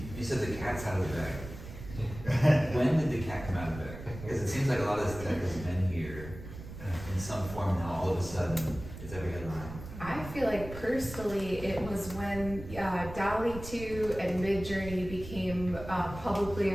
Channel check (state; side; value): noise; right; rumble, 12 dB below the sound